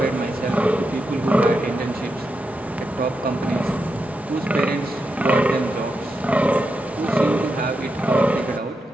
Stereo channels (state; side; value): normal; both; correlation 0.86